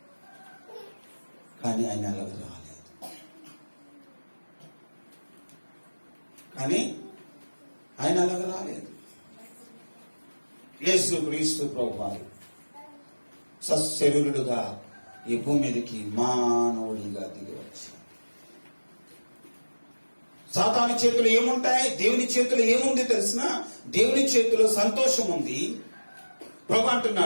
కానీ ఆయన అలాగ రాలేదు. యేసు క్రీస్తు ప్రభువారు సశరీరుడుగా ఈ భూమి మీదకి మానవుడిగా దిగి వచ్చాడు. సాతాను చేతులు ఏముంటాయి? దేవుని చేతులు ఏముంది తెలిసిన? దేవుని చేతిలో సంతోషం ఉంది. ప్రభు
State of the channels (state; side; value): inverted; both; correlation -1.00